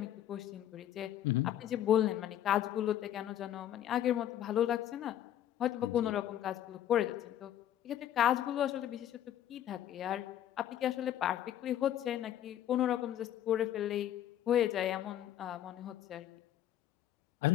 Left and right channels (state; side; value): quieter; right; 11.5 dB